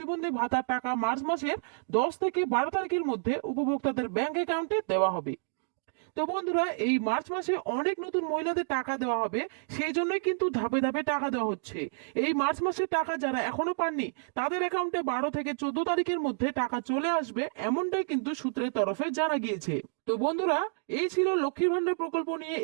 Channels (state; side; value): silent; left; digital silence